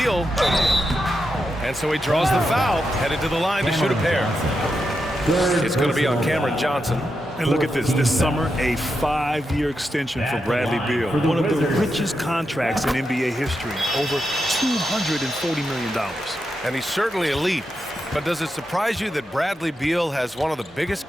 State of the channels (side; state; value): both; normal; correlation 0.86